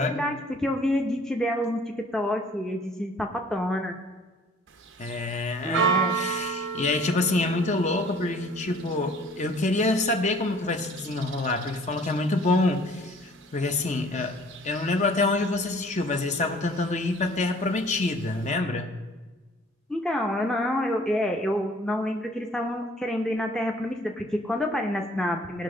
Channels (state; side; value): normal; both; correlation 0.54